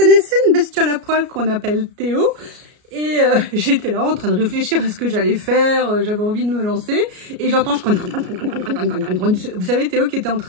une bestiole à poil qu'on appelle Théo? Et j'étais là en train de réfléchir à ce que j'allais faire, j'avais envie de me lancer, et j'entends... Vous savez, Théo qui était en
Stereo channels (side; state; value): left; late; 33 ms